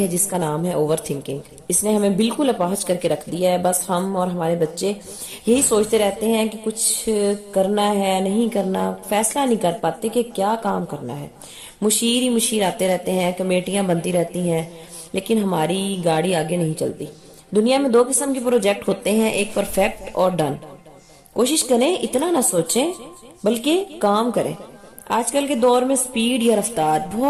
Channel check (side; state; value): both; identical; correlation 1.00